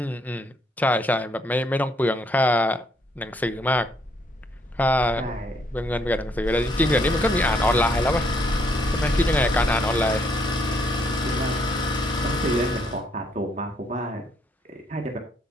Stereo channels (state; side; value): normal; both; correlation 0.70